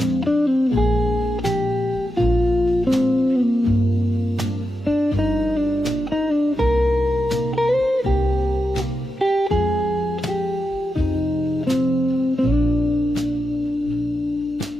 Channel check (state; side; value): normal; both; correlation 0.88